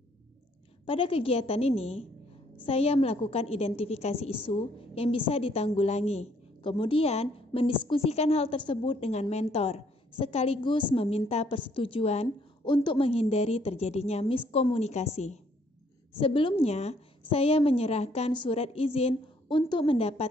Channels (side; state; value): both; normal; correlation 0.66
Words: Pada kegiatan ini, saya melakukan identifikasi isu yang bisa ditanggulangi, kemudian mendiskusikan hal tersebut dengan mentor, sekaligus meminta persetujuan untuk menghindari terjadinya miskomunikasi. Sebelumnya, saya menyerahkan surat izin untuk